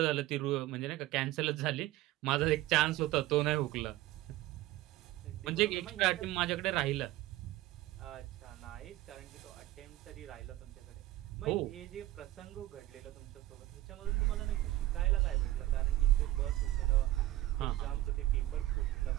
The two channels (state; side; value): quieter; left; 15.8 dB